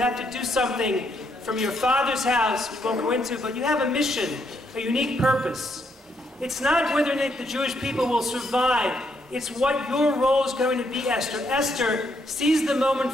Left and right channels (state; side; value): normal; both; correlation 0.74